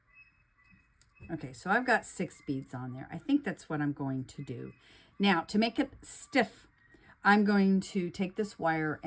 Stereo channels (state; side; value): identical; both; correlation 1.00